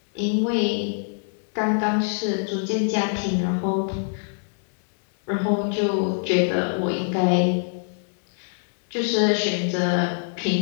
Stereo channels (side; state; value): right; silent; digital silence